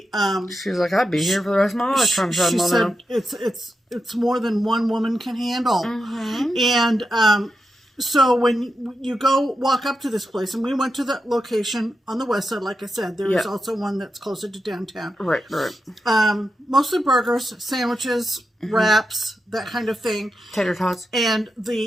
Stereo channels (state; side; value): normal; both; correlation 0.88